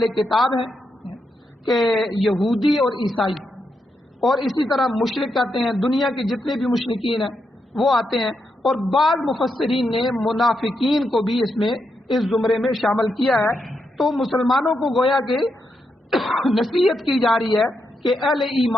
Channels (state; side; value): normal; both; correlation 0.83